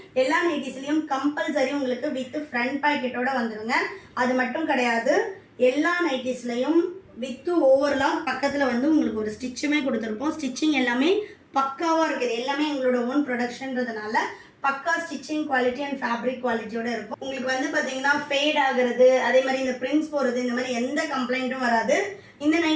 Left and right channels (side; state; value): both; identical; correlation 1.00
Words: எல்லா நைட்டிஸ்லையும் கம்பல்சரி உங்களுக்கு வித் ஃப்ரண்ட் பாக்கெட்டோட வந்துடுங்க. அது மட்டும் கிடையாது, எல்லா நைட்டிஸ்லையும் வித்து ஓவர்லாம் பக்கத்தில் வந்து உங்களுக்கு ஒரு ஸ்டிச்சுமே கொடுத்துருப்போம். ஸ்டிச்சிங் எல்லாமே பக்காவாக இருக்குது. எல்லாமே எங்களோட ஓன் ப்ரொடக்ஷன்றதுனால பக்கா ஸ்டிச்சிங் குவாலிட்டி அண்ட் ஃபேப்ரிக் குவாலிட்டியோட இருக்கும். உங்களுக்கு வந்து பார்த்தீங்கன்னா ஃபேட் ஆகுறது, அதே மாதிரி இந்த பிரிண்ட்ஸ் போகிறது, இந்த மாதிரி எந்த கம்ப்ளைண்ட்டும் வராது. இந்த